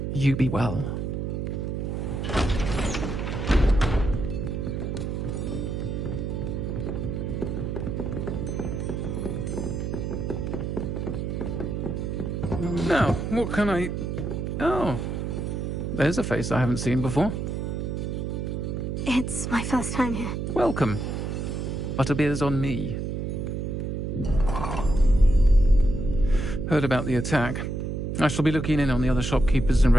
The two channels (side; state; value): right; noise; hum, 3 dB below the sound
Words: You be well. Now, what can I... Oh, there's a face I haven't seen before. It's my first time here. Welcome. Butterbeer's on me. Heard about the attack. I shall be looking in on the other shopkeepers and